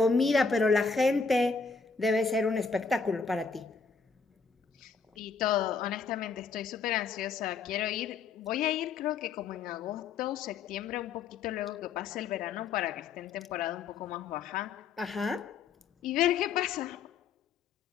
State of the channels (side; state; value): right; quieter; 5.1 dB